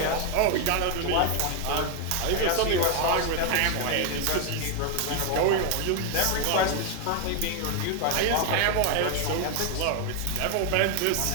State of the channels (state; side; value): different; both; correlation 0.01